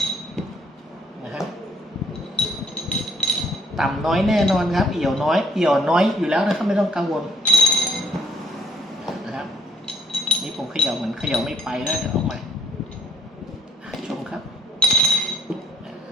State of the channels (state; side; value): normal; both; correlation 0.64